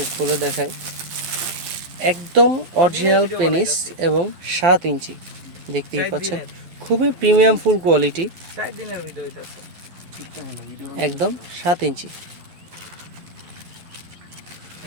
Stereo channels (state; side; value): late; left; 12 ms